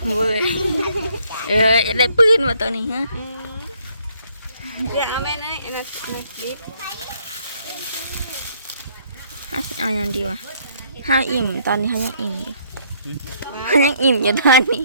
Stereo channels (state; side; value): inverted; both; correlation -0.66